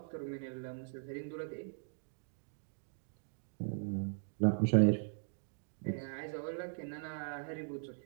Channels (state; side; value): silent; left; digital silence